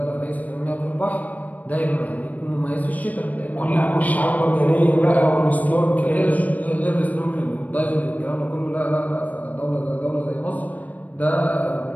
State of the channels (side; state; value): right; late; 0.074 ms